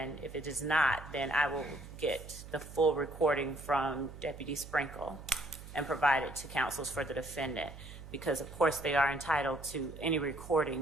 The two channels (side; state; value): right; noise; hum, 14 dB below the sound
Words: I will get the full recording from Deputy Sprinkle and provide it to counsels for the defendant, because of course they are entitled to any